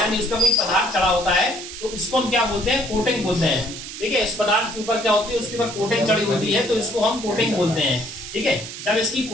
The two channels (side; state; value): right; noise; hiss, 10 dB below the sound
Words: उस पर कोई पदार्थ चढ़ा होता है, तो इसको हम क्या बोलते हैं, कोटिंग बोलते हैं, ठीक है। इस पदार्थ के ऊपर क्या होती है, उसके ऊपर कोटिंग चढ़ी होती है, तो इसको हम कोटिंग बोलते हैं, ठीक है। जब इसकी